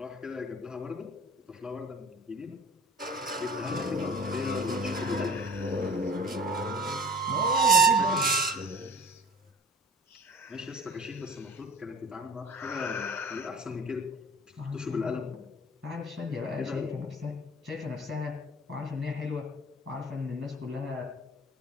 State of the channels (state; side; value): normal; both; correlation 0.42